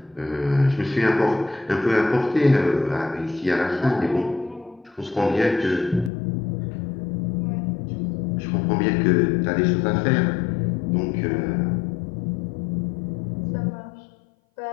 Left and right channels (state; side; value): drops out; right; at 6.1 s